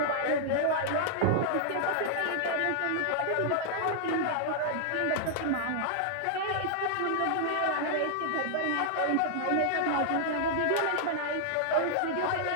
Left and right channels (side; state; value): both; different; correlation -0.01